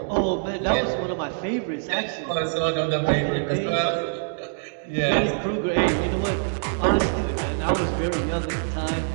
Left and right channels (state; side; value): silent; left; digital silence